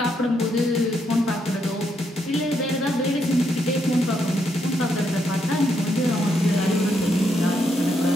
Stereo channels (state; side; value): normal; both; correlation 0.77